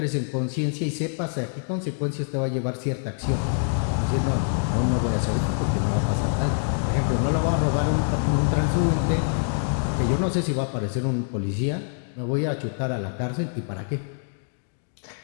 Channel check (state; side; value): silent; right; digital silence